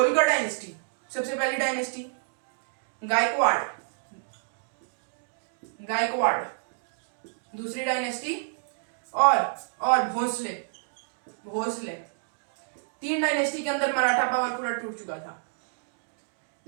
डायनेस्टी सबसे पहली डायनेस्टी, गायकवाड़ दूसरी डायनेस्टी, और भोसले 3 डायनेस्टी के अंदर मराठा पावर पूरा टूट चुका था।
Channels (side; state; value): left; silent; digital silence